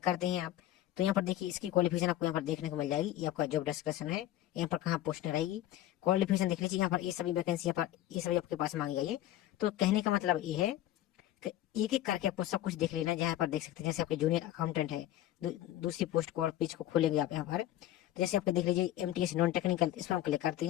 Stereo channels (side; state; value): right; quieter; 13.5 dB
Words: करते हैं आप, तो यहाँ पर देखिए इसकी क्वालिफिकेशन आपको यहाँ पर देखने को मिल जाएगी। ये आपका जॉब डिस्क्रिप्शन है, यहाँ पर कहाँ पोस्ट रहेगी, क्वालिफिकेशन देख लीजिए। यहाँ पर ये सभी वैकेंसी यहाँ पर ये सभी आपके पास मांगी गई है। तो कहने का मतलब ये है कि एक एक करके आपको सब कुछ देख लेना है। जहाँ पर देख सकते हैं जैसे आपके जूनियर अकाउंटेंट है, दूसरी पोस्ट को और पेज को खोलेंगे आप यहाँ पर, तो जैसे आपको देख लीजिए MTS नॉन टेक्निकल, इस पर हम क्लिक करते